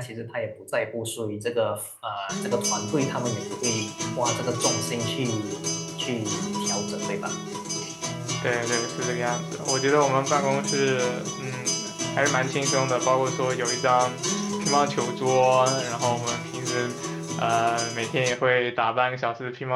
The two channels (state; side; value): identical; both; correlation 1.00